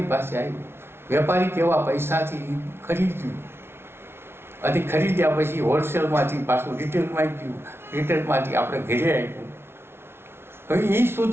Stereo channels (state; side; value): late; left; 0.12 ms